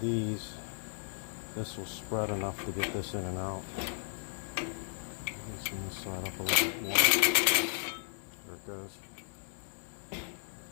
this will spread enough to get this in and out. Loosen this side up a little bit more. There it goes. So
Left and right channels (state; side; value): silent; right; digital silence